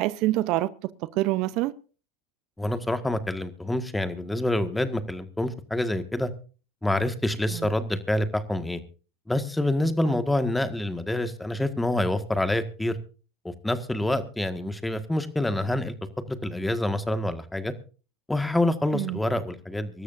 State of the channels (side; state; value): both; normal; correlation 0.80